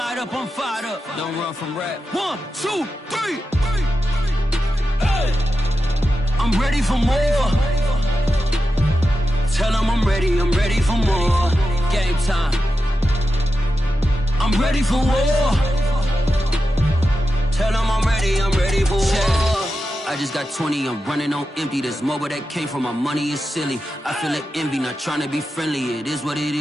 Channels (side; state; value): both; normal; correlation 0.90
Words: up, I'm fired up. Don't run from rap. 1, 2, 3. Hey. I'm ready for more. Tell them I'm ready for more. Game time. I'm ready for war. Tell them I'm ready for war. I just got 20, I'm running on empty. This mobile that came from my money is silly. I feel it envy, not trying to be friendly. It is what it